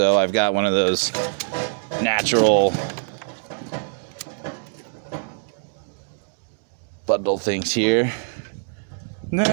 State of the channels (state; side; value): silent; left; digital silence